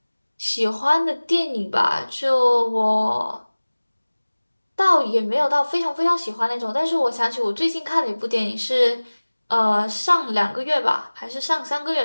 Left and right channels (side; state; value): both; inverted; correlation -1.00